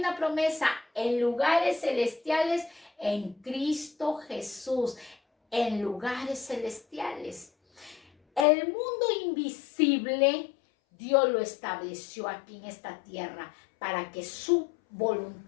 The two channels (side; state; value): right; drops out; at 8.5 s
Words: promesa en lugares celestiales en Cristo Jesús. En lugares celestiales. El mundo invisible, Dios lo estableció aquí en esta tierra para que su